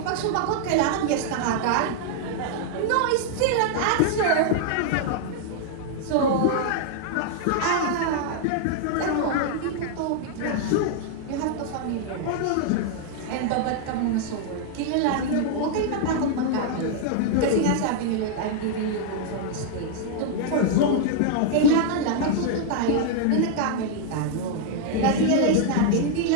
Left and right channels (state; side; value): different; both; correlation -0.01